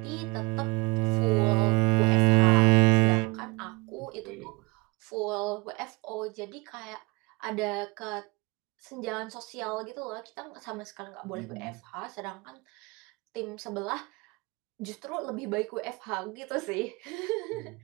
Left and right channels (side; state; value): left; quieter; 25.9 dB